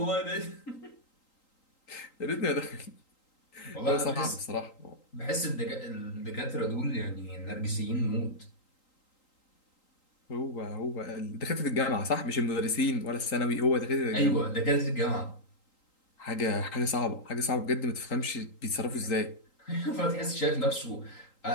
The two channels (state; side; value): late; right; 3.8 ms